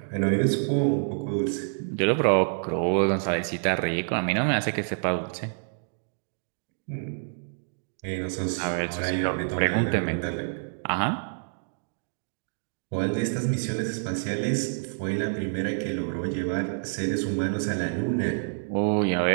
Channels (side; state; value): left; silent; digital silence